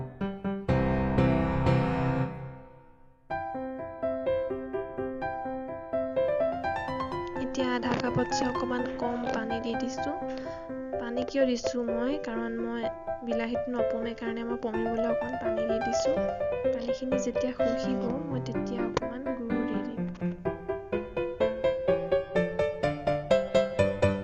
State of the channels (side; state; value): both; identical; correlation 1.00